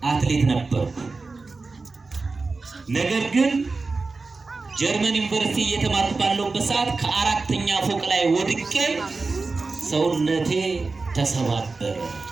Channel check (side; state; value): left; quieter; 3.9 dB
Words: አትሌት ነበርኩ። ነገር ግን ጀርመን ዩኒቨርሲቲ እየተማርኩ ባለሁበት ሰዓት ከአራተኛ ፎቅ ላይ ወድቄ ሰውነቴ ተሰባበረ።